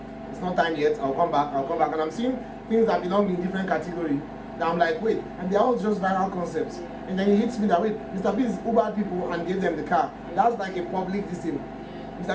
it's not time yet. I'll come back. And I'm seeing things that belong in different category. That I'm like, wait, and they're all just viral concepts. And then it hits me that, wait, Mr. Beast Ubered people and gave them the car. That's like a public thing.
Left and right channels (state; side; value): identical; both; correlation 1.00